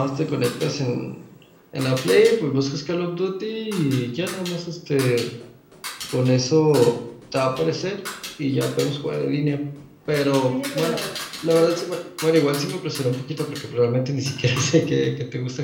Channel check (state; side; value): identical; both; correlation 1.00